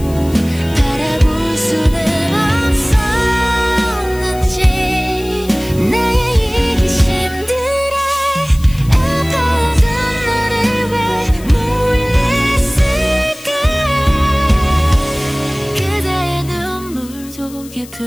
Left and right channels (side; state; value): left; noise; hiss, 19 dB below the sound